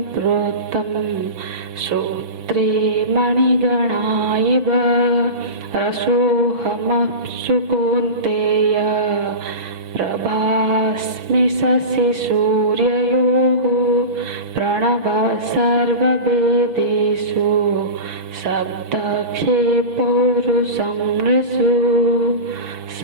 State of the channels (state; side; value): late; left; 5.9 ms